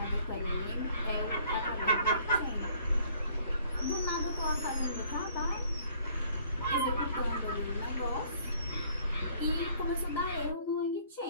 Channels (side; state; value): both; inverted; correlation -0.59